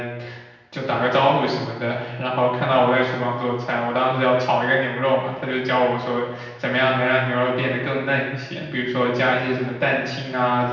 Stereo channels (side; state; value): both; identical; correlation 1.00